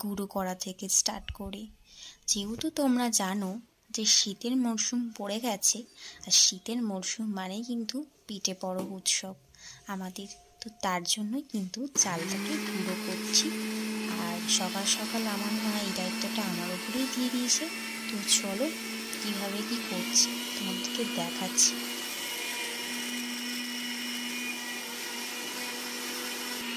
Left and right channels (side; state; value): both; identical; correlation 1.00